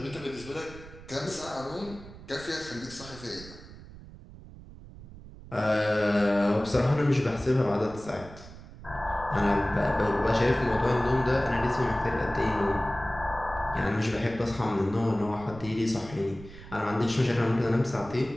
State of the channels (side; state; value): right; noise; rumble, 17 dB below the sound